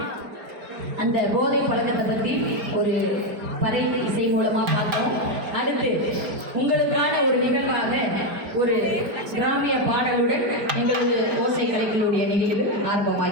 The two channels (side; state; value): left; late; 4.7 ms